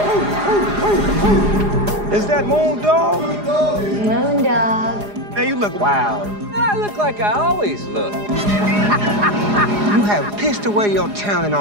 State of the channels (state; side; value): late; left; 4.9 ms